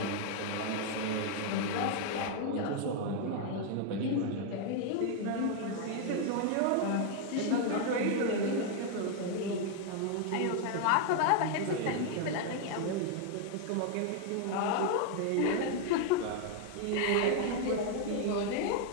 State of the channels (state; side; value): different; both; correlation 0.00